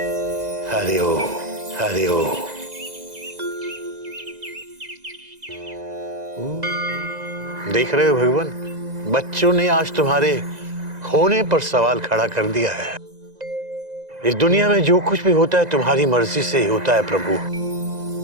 हरिओम हरिओम। देख रहे हो भगवान, बच्चों ने आज तुम्हारे होने पर सवाल खड़ा कर दिया है। इस दुनिया में जो कुछ भी होता है तुम्हारी मर्जी से ही होता है प्रभु।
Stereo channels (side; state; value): left; late; 2.0 ms